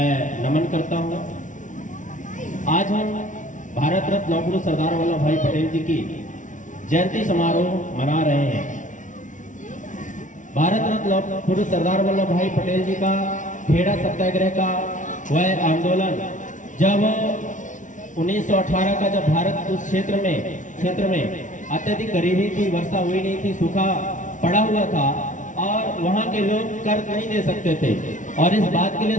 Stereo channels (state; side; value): late; right; 0.37 ms